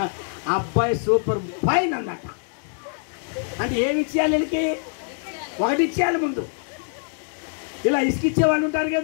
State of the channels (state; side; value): silent; right; 63 dB below the other